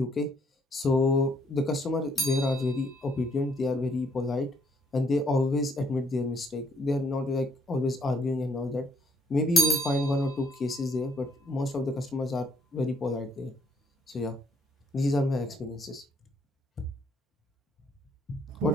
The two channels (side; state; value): both; normal; correlation 0.66